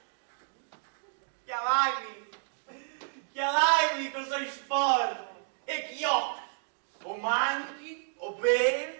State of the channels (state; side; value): silent; left; digital silence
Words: chiamai cosa sporco, e chiocchi, o manchi, o